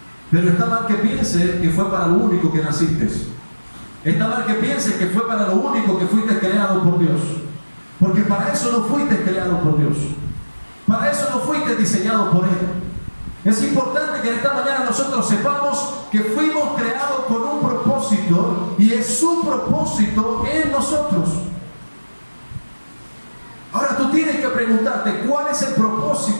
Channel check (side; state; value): both; inverted; correlation -1.00